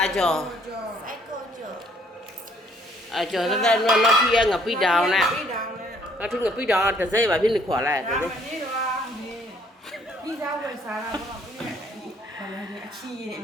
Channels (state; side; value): normal; both; correlation 0.63